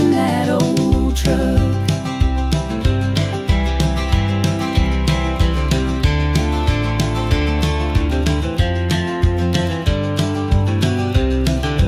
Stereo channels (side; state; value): both; identical; correlation 1.00